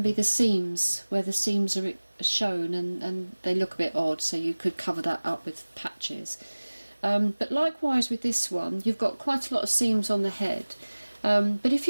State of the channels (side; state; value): both; inverted; correlation -1.00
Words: be the seams, where the seams are shown and they look a bit odd, so you could cover that up with patches. But likewise with this one, you've got quite a lot of seams on the head. But if